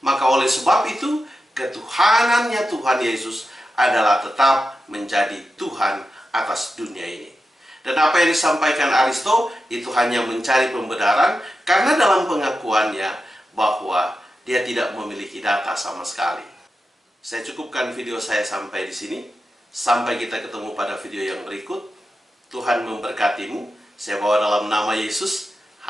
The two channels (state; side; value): normal; both; correlation 0.91